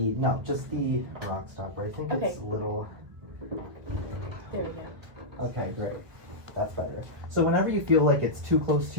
just the rock stopper. I think it's a little. There we go. Okay, great. That's better. So whenever you feel like it's too close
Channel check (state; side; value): late; left; 1.4 ms